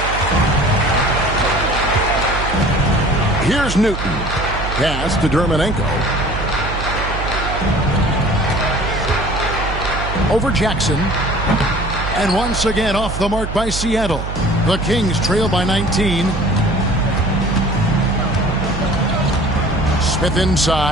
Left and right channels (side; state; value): right; noise; hum, 6 dB below the sound